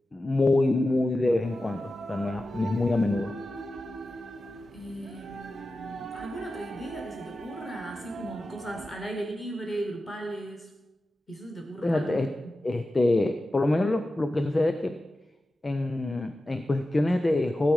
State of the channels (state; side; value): normal; both; correlation 0.93